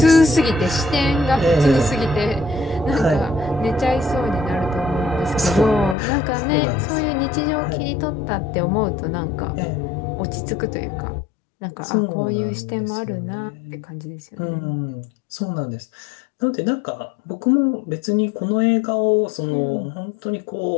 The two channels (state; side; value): drops out; right; at 6.0 s